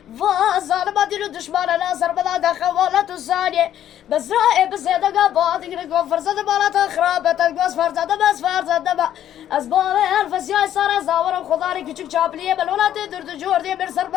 فظالم دين الدشمالة ناصر بلاد خوالة ثانية بس رائع بس يدقى بعض يقول فرصة بالات خرابة تنقص فرصة بس فرصة دبا أسباب الفسياي صار زاور وخضاري كيشك شابلية بالولاد درد جوردي مرسر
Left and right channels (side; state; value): right; quieter; 11.1 dB